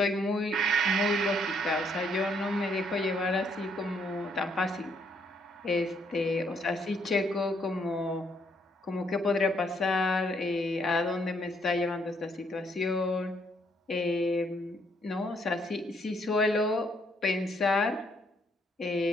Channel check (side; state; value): both; normal; correlation 0.70